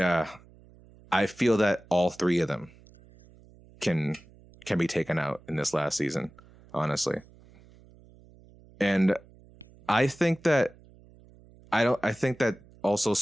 I feel that all 3 of them can be taken out in this last season, honestly. And I think that also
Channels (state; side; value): noise; right; hum, 25 dB below the sound